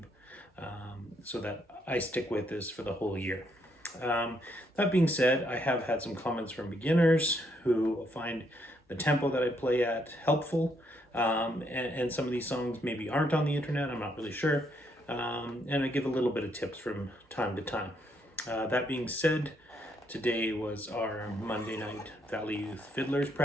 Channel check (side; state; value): both; normal; correlation 0.73